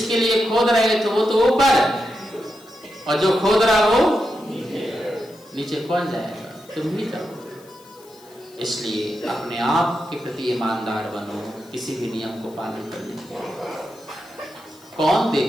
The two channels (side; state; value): left; noise; hiss, 26 dB below the sound